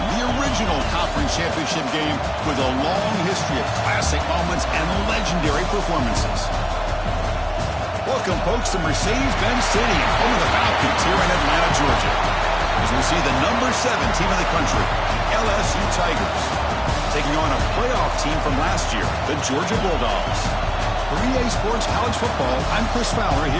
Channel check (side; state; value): both; identical; correlation 1.00